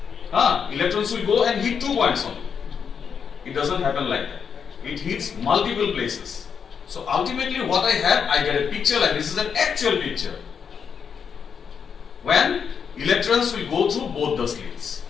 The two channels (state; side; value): quieter; right; 6.8 dB